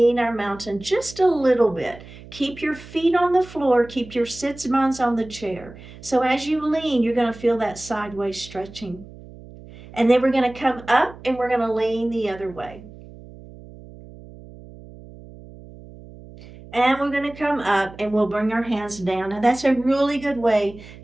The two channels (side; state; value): right; noise; hum, 18 dB below the sound